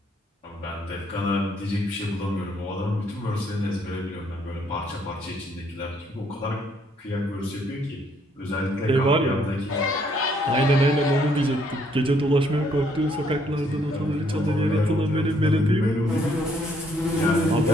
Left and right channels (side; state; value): both; normal; correlation 0.68